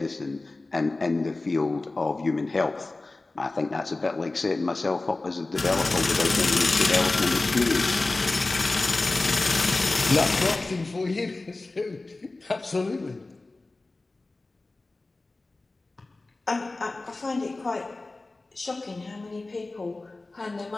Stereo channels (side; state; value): right; quieter; 3.2 dB